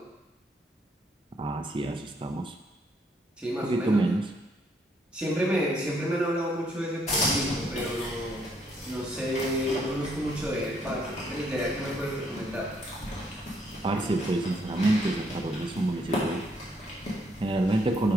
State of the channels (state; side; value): normal; both; correlation 0.71